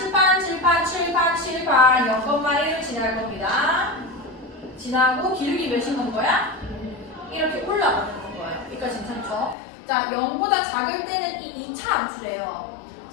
0,1을 지날 겁니다. 지나고 기울기 몇인 건 거야? 이렇게 올라가는 건 거예요. 여기까지 괜찮죠? 자, 0보다 작을 때는 이 2차 함수래요.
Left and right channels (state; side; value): drops out; right; at 9.6 s